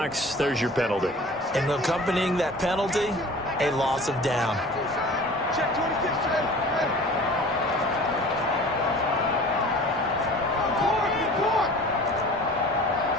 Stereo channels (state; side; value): normal; both; correlation 0.43